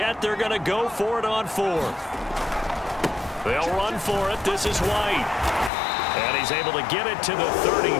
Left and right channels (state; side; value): drops out; right; at 5.7 s